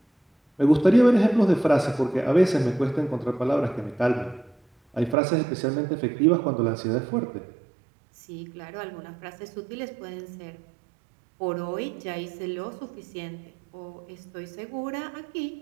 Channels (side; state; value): left; drops out; at 5.2 s